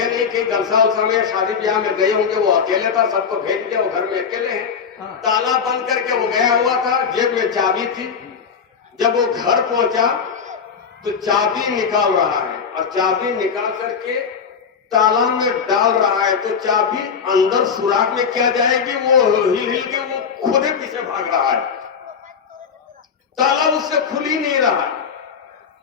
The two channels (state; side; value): quieter; right; 6.4 dB